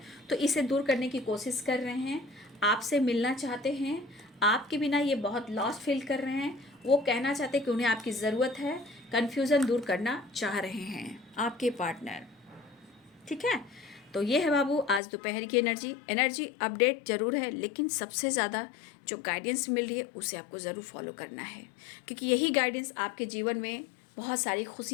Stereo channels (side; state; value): right; drops out; at 15.0 s